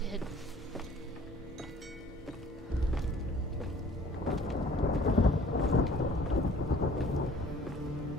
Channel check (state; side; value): normal; both; correlation 0.53